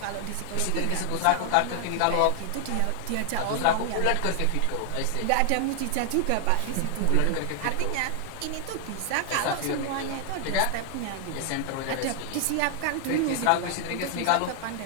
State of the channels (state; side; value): different; both; correlation 0.00